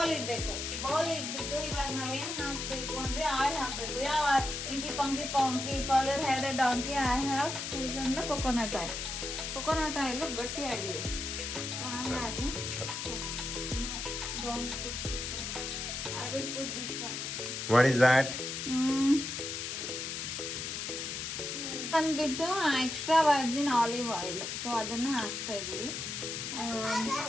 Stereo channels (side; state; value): left; noise; hiss, 4 dB below the sound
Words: ಇಡ್ಬೇಕು. ಬೌಲ್ ಇಟ್ಬಿಟ್ಟು ಇವಾಗ ನಾವೇನ್ ಹಾಕ್ಬೇಕು ಅಂದ್ರೆ ಆಯಿಲ್ ಹಾಕ್ಬೇಕು. ಯಾವ inky pinky father had a donkey, I have chosen the coconut oil. Coconut oil ಗಟ್ಟಿಯಾಗಿದೆ, ಹಾಗಾಗಿ I will put this one. What is that? ಬಂದ್ಬಿಟ್ಟು extra Virgin olive oil. So ಅದನ್ನ ಹಾಕ್ತಾ ಇದೀವಿ.